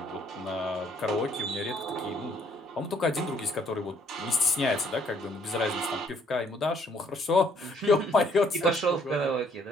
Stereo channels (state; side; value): normal; both; correlation 0.65